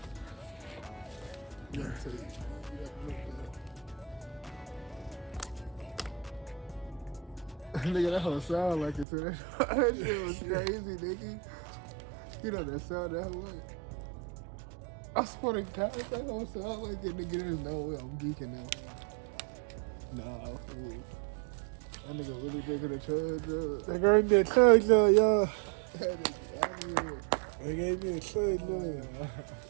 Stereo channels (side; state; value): left; drops out; at 9.1 s